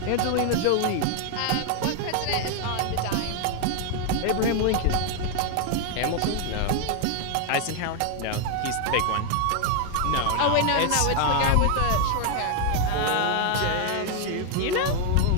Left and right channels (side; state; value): both; different; correlation 0.01